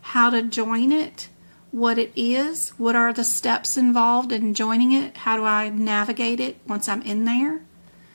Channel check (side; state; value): both; inverted; correlation -1.00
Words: how to join it, what it is, what are the steps involved in joining it, how do I navigate it once I'm in there.